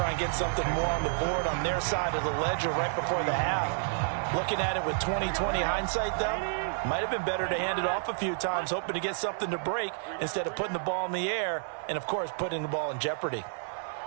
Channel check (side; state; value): left; silent; digital silence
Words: and get something more on the board on their side of the ledger right before the half. Looking at it with 20/20 hindsight, though, might have been better to hand it off a few times, hoping to get something to break instead of putting the ball in the air and, of course, putting the ball in jeopardy.